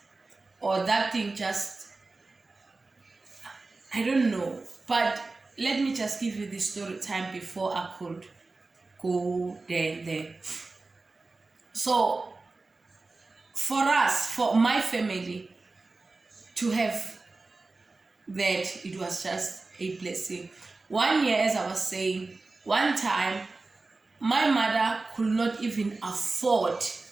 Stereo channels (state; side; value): quieter; left; 3.5 dB